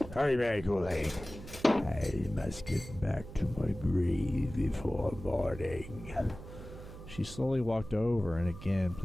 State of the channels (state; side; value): noise; right; hum, 14 dB below the sound